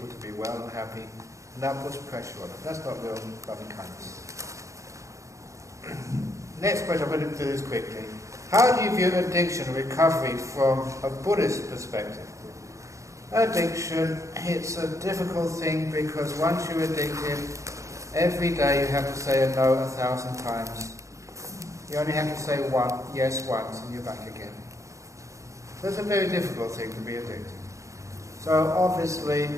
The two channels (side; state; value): left; late; 0.15 ms